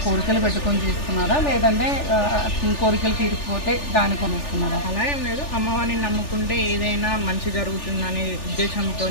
కోరికలు పెట్టుకొని చేస్తున్నారా, లేదంటే కోరికలు తీరిపోతే దాని కొనిస్తున్నారా? అలా ఏం లేదు, అమ్మవారిని నమ్ముకుంటే ఏదైనా మంచి జరుగుతుందనే ఉద్దేశంతో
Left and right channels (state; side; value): late; right; 3.4 ms